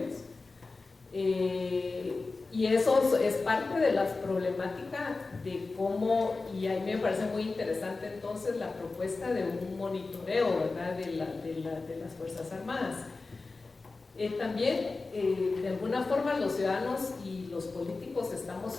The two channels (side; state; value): right; quieter; 3.8 dB